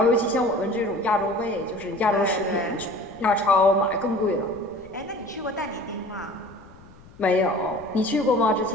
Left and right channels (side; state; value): left; noise; rumble, 23 dB below the sound